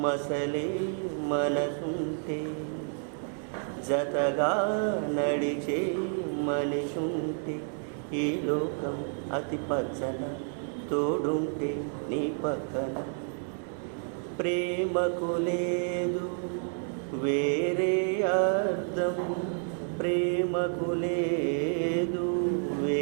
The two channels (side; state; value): left; silent; 58 dB below the other